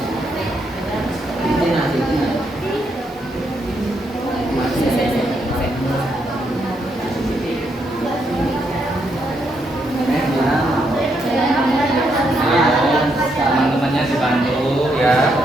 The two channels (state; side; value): normal; both; correlation 0.77